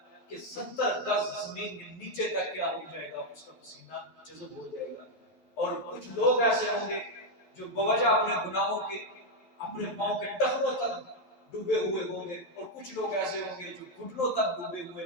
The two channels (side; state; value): right; late; 11 ms